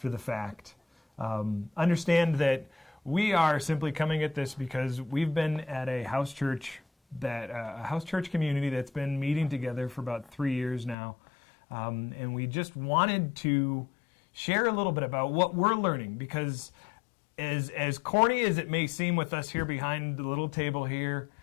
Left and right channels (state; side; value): drops out; right; at 11.0 s